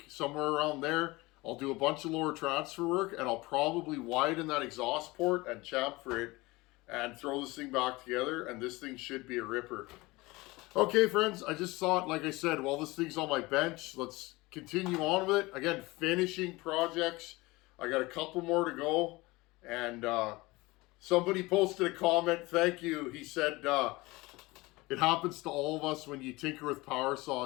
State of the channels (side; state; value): right; quieter; 21.9 dB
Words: somewhere around there. I'll do a bunch of lower transfer work, and I'll probably widen that exhaust port and chamfer it and throw this thing back together, and this thing should be a ripper. Okay, friends, I just thought, like I said, while this thing's on my bench, let's continue on with it. Again, finishing projects. I got a couple more to go, and somebody posted a comment. Thank you. He said, it happens to all of us when you tinker with power